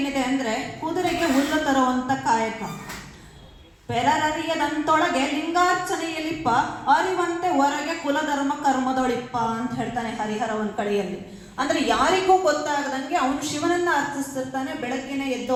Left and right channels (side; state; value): both; identical; correlation 1.00